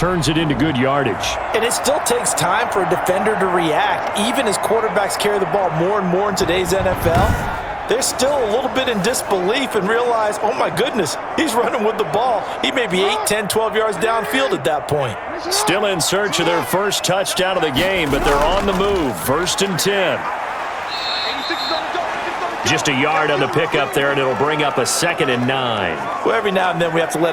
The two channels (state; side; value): identical; both; correlation 1.00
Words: it into good yardage. And it still takes time for a defender to react, even as quarterbacks carry the ball more and more in today's NFL. They're still a little bit in disbelief and realize, oh my goodness, he's running with the ball. He may be 8, 10, 12 yards downfield at that point. Still in search of their first touchdown of the game, but they're on the move. 1st and 10. Just a yard on the pickup there, and it'll bring up a 2nd and 9. Well, every now and then we have to